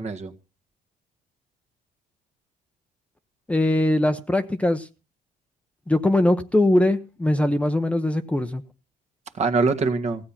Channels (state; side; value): normal; both; correlation 0.87